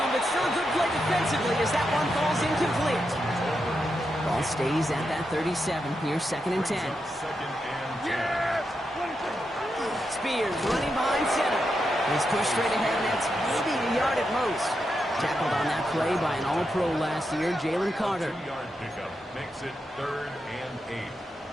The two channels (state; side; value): normal; both; correlation 0.85